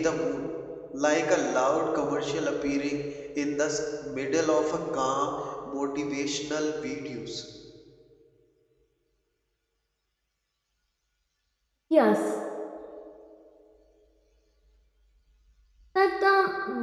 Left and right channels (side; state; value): both; identical; correlation 1.00